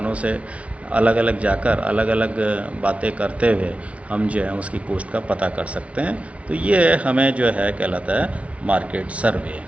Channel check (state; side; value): late; left; 0.064 ms